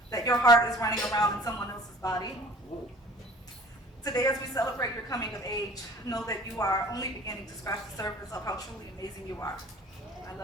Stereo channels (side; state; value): both; normal; correlation 0.47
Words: that your heart is running around in someone else's body. Today, as we celebrate your coming of age, know that you are only beginning to scratch the surface of how truly amazing you are. I